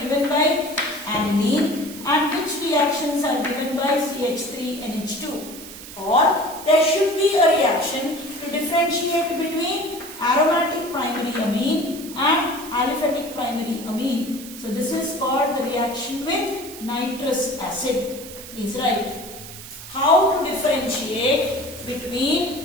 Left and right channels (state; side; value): noise; right; hiss, 14 dB below the sound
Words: by amine and which reactions are given by CH3NH2, or there should be a reaction to differentiate between aromatic primary amine and aliphatic primary amine. So this is called the reaction with nitrous acid. Please write. How to differentiate